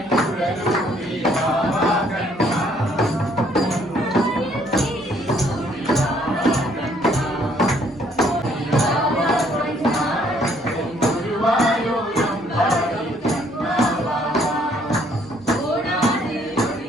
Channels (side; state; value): both; normal; correlation 0.64